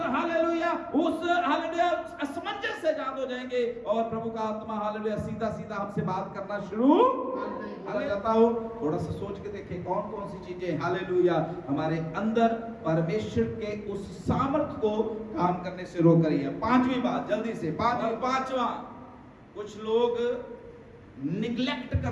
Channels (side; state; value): both; identical; correlation 1.00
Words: हालेलुया असमंजस से आजाद हो जाएंगे और प्रभु का आत्मा हालेलुया सीधा सीधा हमसे बात करना शुरू करता हो। थोड़ा सा सोच के देखें कौन कौन सी चीजें हालेलुया हमारे अंदर परमेश्वर के उस सामर्थ को काम करने से रोक रही है। पांचवी बात जल्दी से, पांचवा, कुछ लोग निग्लेक्ट